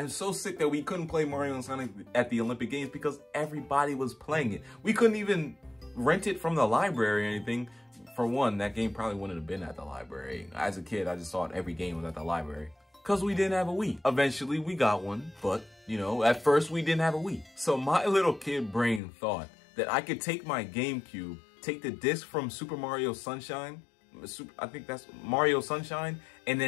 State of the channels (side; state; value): right; drops out; at 19.0 s